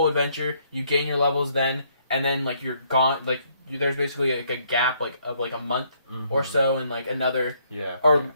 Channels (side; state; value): both; inverted; correlation -0.69